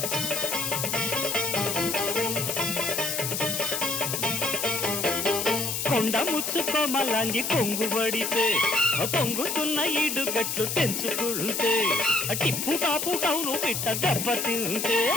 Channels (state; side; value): noise; left; hiss, 2 dB below the sound